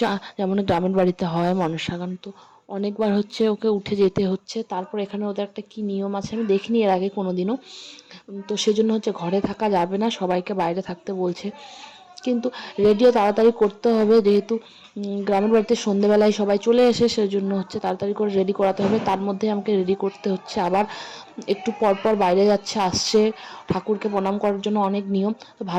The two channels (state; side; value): identical; both; correlation 1.00